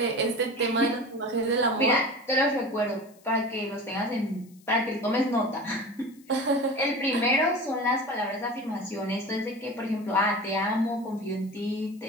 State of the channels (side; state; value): left; noise; hiss, 29 dB below the sound